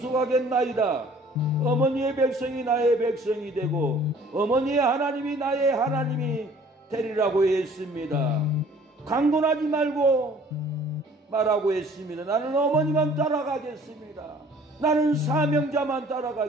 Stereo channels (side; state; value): both; normal; correlation 0.53